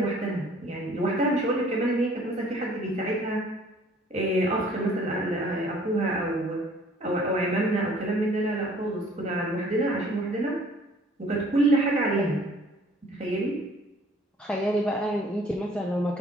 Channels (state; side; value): normal; both; correlation 0.55